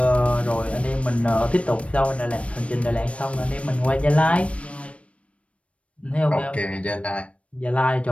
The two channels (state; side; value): late; right; 0.062 ms